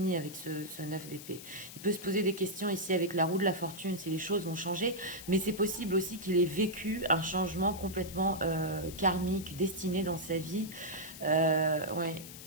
avec ce 9 d'épée. Il peut se poser des questions ici avec la roue de la fortune, si les choses vont changer, mais c'est possible aussi qu'il ait vécu un changement complètement karmique, destiné dans sa vie. Ouais.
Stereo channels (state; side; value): noise; left; hiss, 14 dB below the sound